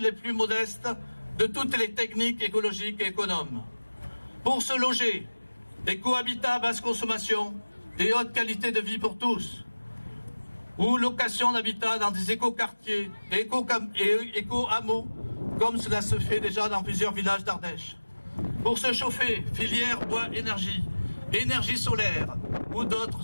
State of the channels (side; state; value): both; inverted; correlation -1.00